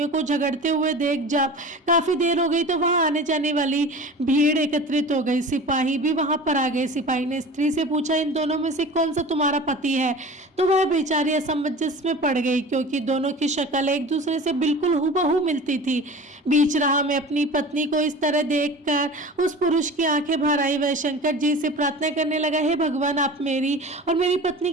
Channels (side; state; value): both; normal; correlation 0.37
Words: को झगड़ते हुए देख जब काफी देर हो गई तो वहां आने जाने वाली भीड़ एकत्रित हो गई। सिपाही भी वहां पर आ गए। सिपाही ने स्त्री से पूछा, इन दोनों में से कौन सा तुम्हारा पति है? तो वह बेचारी असमंजस में पड़ गई, क्योंकि दोनों की शक्ल एक दूसरे से बिल्कुल हुबहू मिलती थी। बीच राह में अपनी पत्नी को इस तरह देखकर उस पुरुष की आंखें भर आई। वह शंकर जी से प्रार्थना करने लगा, हे भगवान, आप मेरी और मेरी